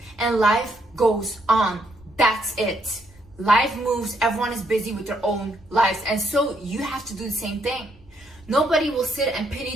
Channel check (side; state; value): right; noise; rumble, 26 dB below the sound